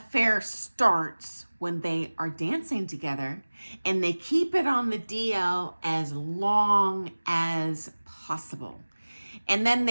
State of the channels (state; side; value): inverted; both; correlation -1.00